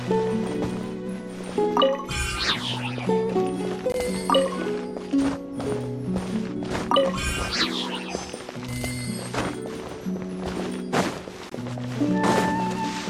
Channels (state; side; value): identical; both; correlation 1.00